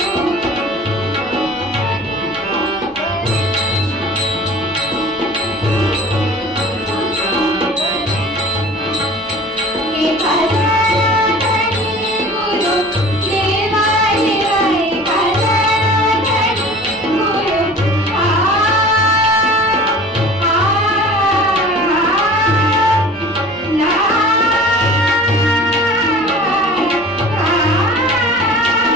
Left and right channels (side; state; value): both; normal; correlation 0.43